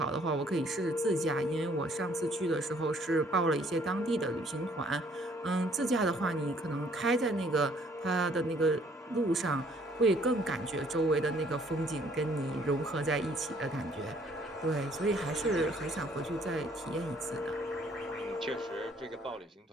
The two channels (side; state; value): both; normal; correlation 0.62